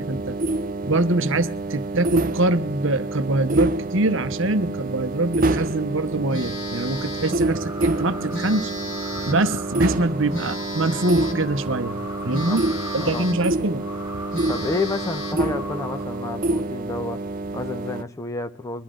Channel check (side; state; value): both; normal; correlation 0.41